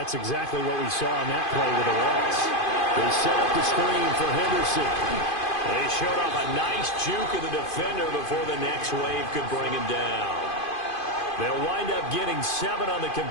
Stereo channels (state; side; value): late; right; 2.5 ms